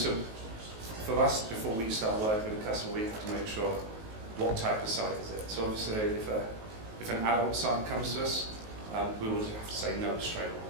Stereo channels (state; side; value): late; left; 19 ms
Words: for us, before we start working with a customer, we have to make sure what type of site is it. So obviously, if an adult site comes to us, we will have to say no straight